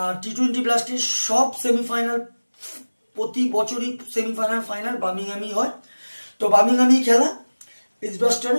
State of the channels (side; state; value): both; inverted; correlation -1.00